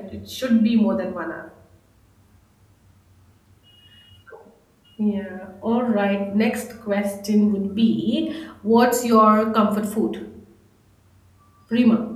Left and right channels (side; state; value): both; identical; correlation 1.00